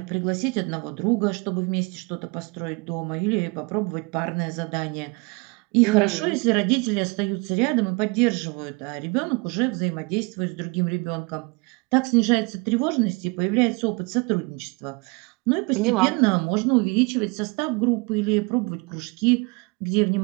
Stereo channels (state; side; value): quieter; left; 28.9 dB